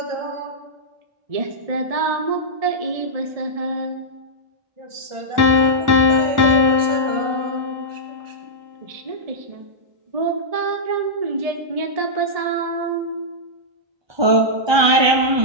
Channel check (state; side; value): late; left; 1.2 ms